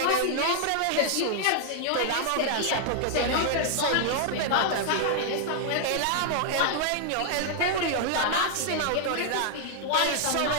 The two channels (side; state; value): both; different; correlation -0.01